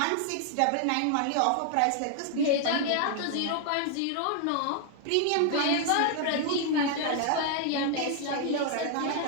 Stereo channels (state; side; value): different; both; correlation 0.00